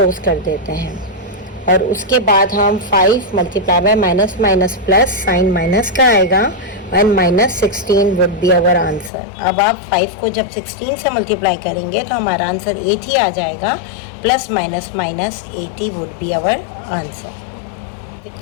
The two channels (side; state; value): right; drops out; at 9.1 s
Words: कर देते हैं। और उसके बाद हम 5 multiply by minus minus plus sign minus का आएगा and minus 16 would be our answer. अब आप 5 को जब 16 से मल्टीप्लाई करेंगे तो हमारा आंसर 80 आ जाएगा, plus minus minus 80 would be our answer.